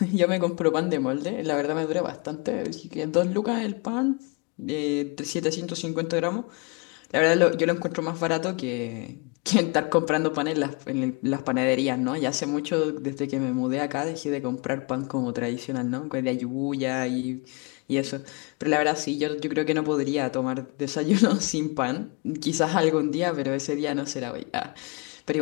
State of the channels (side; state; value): right; quieter; 31.4 dB